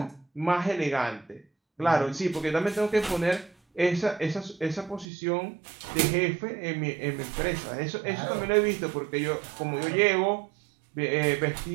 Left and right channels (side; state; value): left; drops out; at 5.1 s